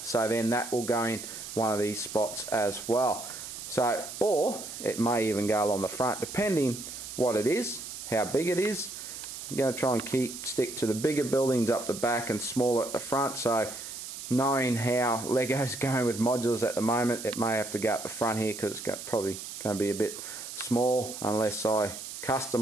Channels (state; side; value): noise; right; hiss, 10 dB below the sound